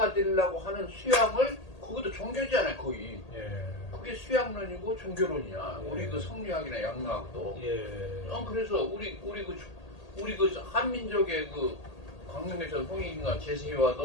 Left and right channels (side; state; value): right; late; 1.8 ms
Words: 되려고 하는 수양을 그것도 종교잖아요 거의. 그게 수양론이고 종교론이야. 우리 그 성리학이나 양락도. 그래서 우리 그 한민족의 그 광명에서 홍익인간